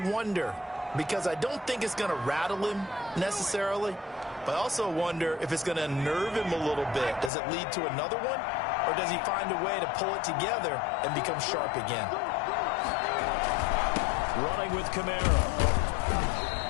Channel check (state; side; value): drops out; right; at 7.3 s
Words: because I don't think it's going to rattle him necessarily, but I also wonder if it's going to unnerve him a little bit. Does it lead to another one, or does he find a way to pull it together and become sharp again? Running with Kamara.